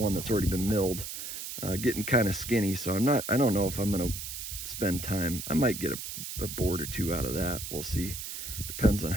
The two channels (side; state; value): right; noise; hiss, 7 dB below the sound